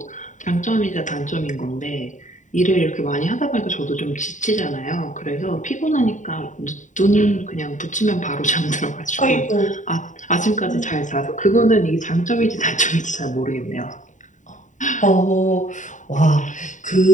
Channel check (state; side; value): late; right; 0.36 ms